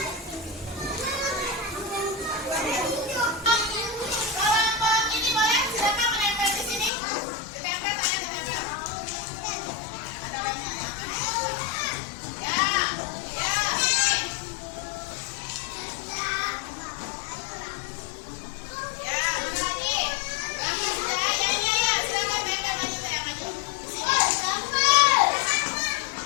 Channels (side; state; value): right; drops out; at 6.9 s